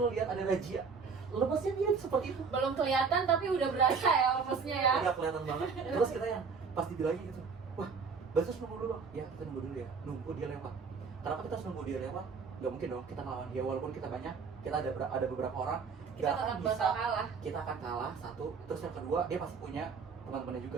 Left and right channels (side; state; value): left; quieter; 5.3 dB